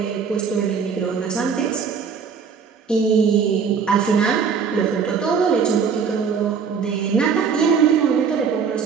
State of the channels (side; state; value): left; quieter; 6.2 dB